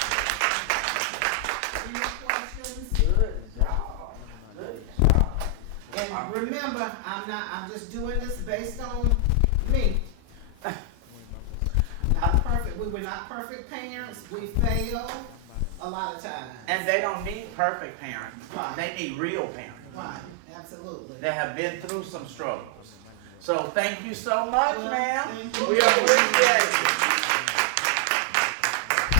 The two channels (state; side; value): different; both; correlation 0.00